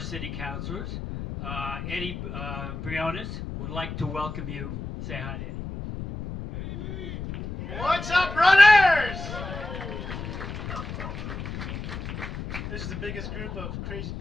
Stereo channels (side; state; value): left; noise; rumble, 7 dB below the sound